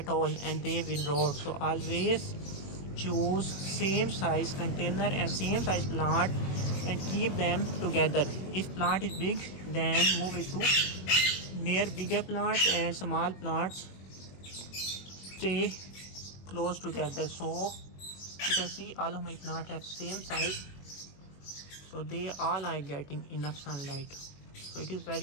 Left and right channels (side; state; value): right; late; 21 ms